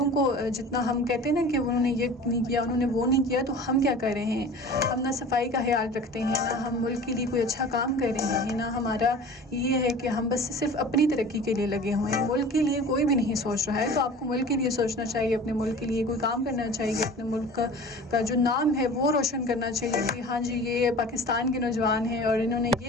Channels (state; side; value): normal; both; correlation 0.40